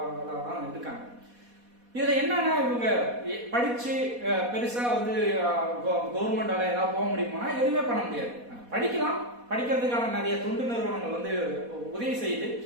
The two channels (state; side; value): late; left; 4.2 ms